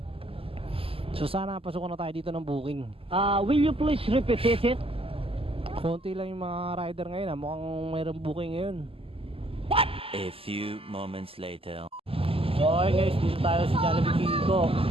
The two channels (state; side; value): late; left; 0.27 ms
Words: So sana pasukan na tayo dito ng booking. Will you please repeat it? Konti lang yung mga rider ngayon. Mukhang mayroong booking ngayon. A few moments later. So okay guys, dito tayo sa Jollibee Kiko.